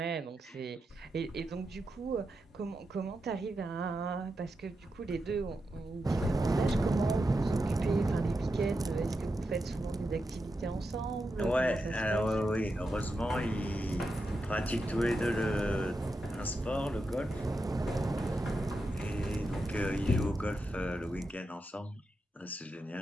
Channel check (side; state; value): both; normal; correlation 0.87